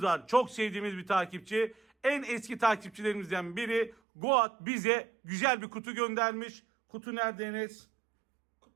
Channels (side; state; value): left; drops out; at 4.0 s